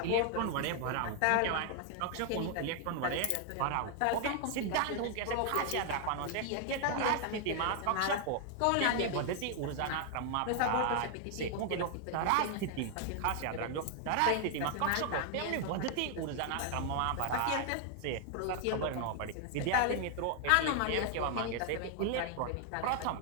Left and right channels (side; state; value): both; different; correlation 0.00